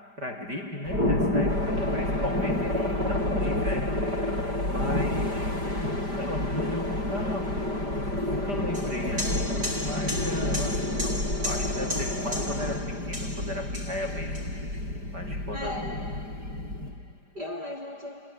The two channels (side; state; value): left; late; 5.0 ms